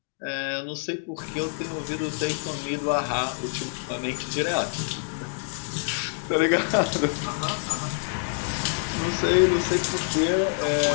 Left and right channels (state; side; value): silent; right; digital silence